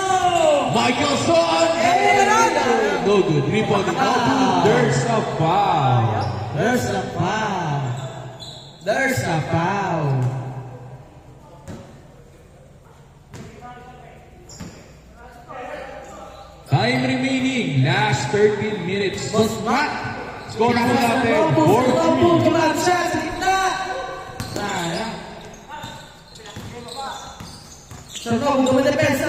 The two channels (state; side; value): identical; both; correlation 1.00